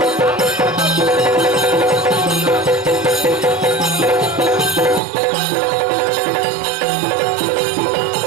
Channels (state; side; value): drops out; left; at 5.0 s